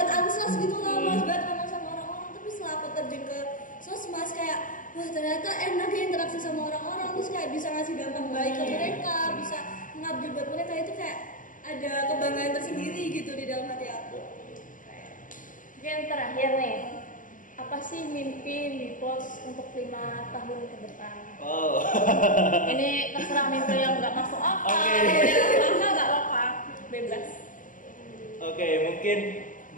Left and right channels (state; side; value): late; right; 0.38 ms